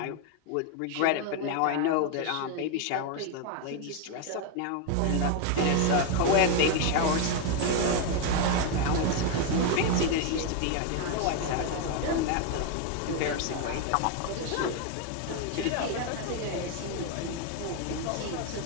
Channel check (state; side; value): different; both; correlation 0.01